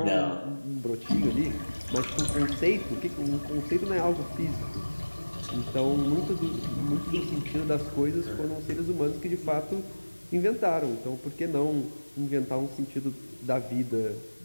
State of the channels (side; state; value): both; inverted; correlation -1.00